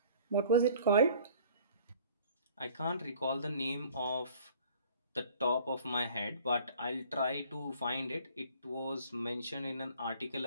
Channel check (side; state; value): both; inverted; correlation -0.52